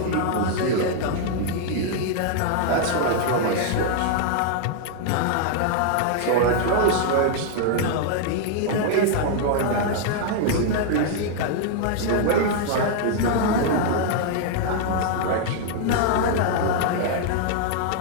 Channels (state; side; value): different; both; correlation 0.00